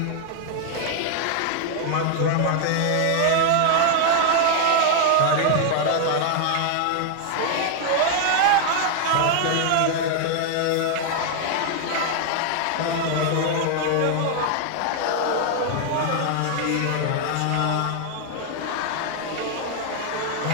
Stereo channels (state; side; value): different; both; correlation 0.00